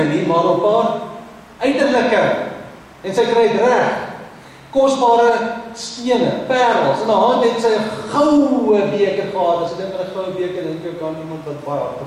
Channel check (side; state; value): both; identical; correlation 1.00